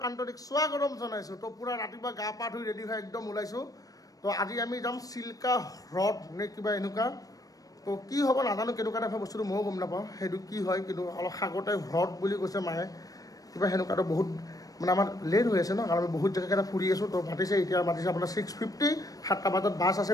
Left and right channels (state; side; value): late; right; 0.18 ms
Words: আন্তৰিক স্বাগতম জনাইছোঁ তো পুৰা ৰাতিপুৱা গা পা ধুই ৰেডি হৈ একদম ওলাইছোঁ তো আজি আমি যাম চিল্কা হ্ৰদ নে কিবা এনেকুৱা তো কি হ'ব নাজানো কেনেকুৱা টাইপৰ বস্তুটো ময়ো গম নাপাওঁ সেইটো কি হয় কিন্তু অলপ সাগৰতে হ্ৰদ বুলি কৈছে মায়ে কিবা সেনেকুৱাটো বহুত মানে আমাৰ লেট হৈ আছে ন কাৰণ আমি বহুত জেগাকেইটা ফুৰি আছোঁ তো মাতিছে এতিয়া মাতিছে আপোনাৰ 6:50 7টা বজাত বাছ আছে